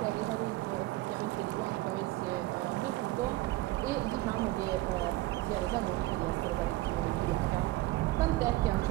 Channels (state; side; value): quieter; left; 18.1 dB